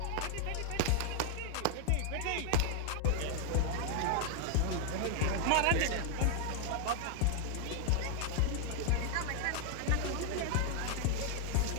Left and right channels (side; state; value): both; different; correlation 0.00